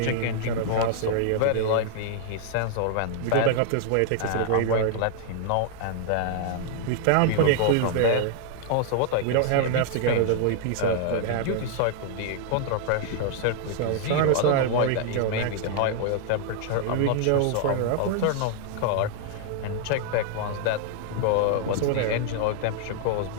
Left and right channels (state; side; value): different; both; correlation 0.00